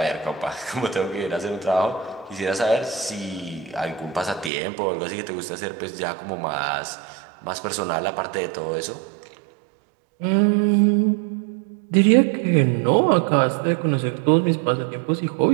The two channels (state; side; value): drops out; left; at 4.5 s